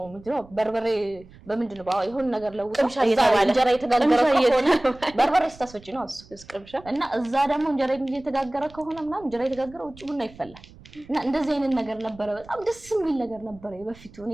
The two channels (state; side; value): noise; right; rumble, 22 dB below the sound